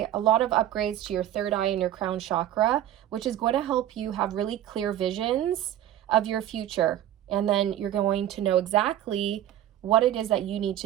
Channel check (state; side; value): quieter; left; 12.3 dB